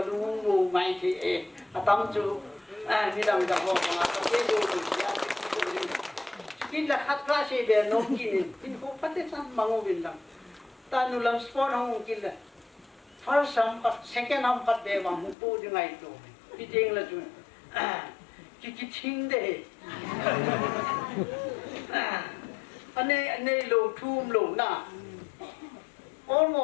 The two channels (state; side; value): drops out; right; at 15.4 s